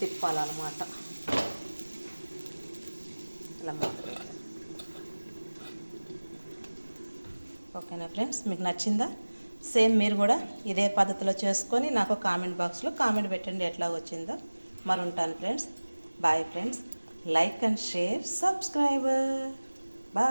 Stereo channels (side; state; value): both; inverted; correlation -1.00